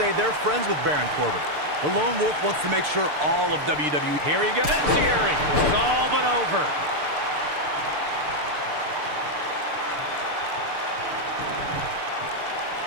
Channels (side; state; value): left; late; 6.7 ms